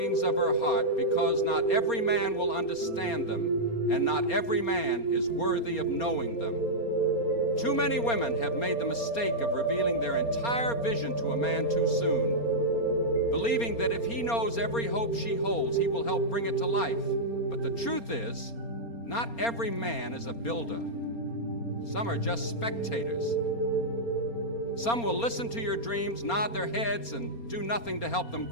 of her heart, because not every man will understand them, and not every man is worthy of knowing them. Too many women have made the mistake of revealing their entire vision to a man too soon, believing that if he knows every hope she holds, he will help bring it to life. But the truth is, not every man is a builder. Some are just spectators. Some will listen to your dreams, nod their heads, and do nothing to help them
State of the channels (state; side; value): late; right; 4.3 ms